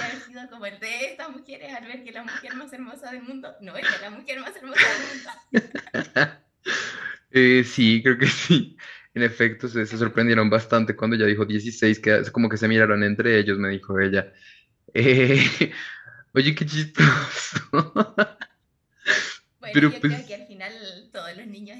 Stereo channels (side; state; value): both; identical; correlation 1.00